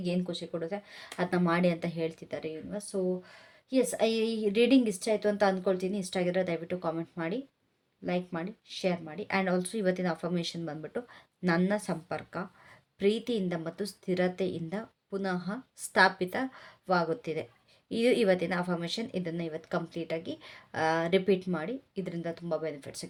ಏನು ಖುಷಿ ಕೊಡುತ್ತೆ ಅದನ್ನ ಮಾಡಿ ಅಂತ ಹೇಳ್ತಿದ್ದಾರೆ ಇವಾಗ. ಸೊ ಎಸ್, ಈ ರೀಡಿಂಗ್ ಇಷ್ಟ ಆಯಿತು ಅಂತ ಅಂದ್ಕೊಳ್ತೀನಿ. ಇಷ್ಟ ಆಗಿದ್ರೆ ದಯವಿಟ್ಟು ಕಾಮೆಂಟ್ ಮಾಡಿ, ಲೈಕ್ ಮಾಡಿ, ಶೇರ್ ಮಾಡಿ. ಆ್ಯಂಡ್ ಆಲ್ಸೋ ಇವತ್ತಿನ ಅಫರ್ಮೇಷನ್ ಬಂದ್ಬಿಟ್ಟು, ನನ್ನ ಸಂಪರ್ಕ ಪ್ರೀತಿಯಿಂದ ಮತ್ತು ಸ್ಥಿರತೆಯಿಂದ ಪುನಃ ಸ್ಥಾಪಿತವಾಗುತ್ತಿದೆ. ಇದು ಇವತ್ತಿನ ಅಫರ್ಮೇಷನ್. ಇದನ್ನು ಇವತ್ತು ಕಂಪ್ಲೀಟಾಗಿ ರಿಪೀಟ್ ಮಾಡಿ, ಇದರಿಂದ ತುಂಬ ಬೆನಿಫಿಟ್ಸ್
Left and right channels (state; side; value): identical; both; correlation 1.00